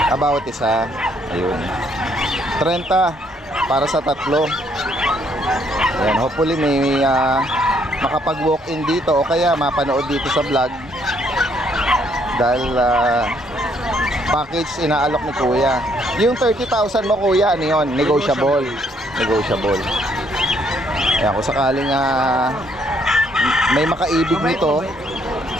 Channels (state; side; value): normal; both; correlation 0.69